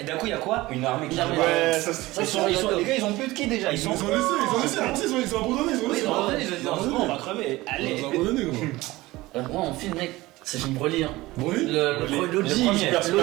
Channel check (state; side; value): quieter; left; 19.2 dB